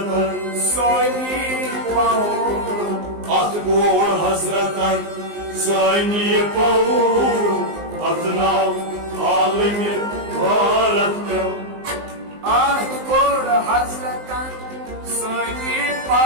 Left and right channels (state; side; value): late; left; 19 ms